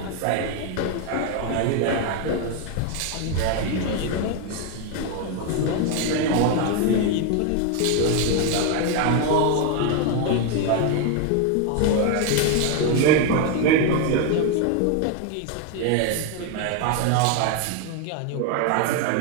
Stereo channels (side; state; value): both; different; correlation 0.01